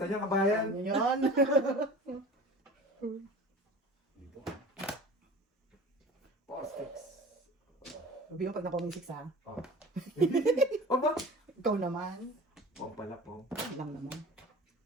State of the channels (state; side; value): normal; both; correlation 0.39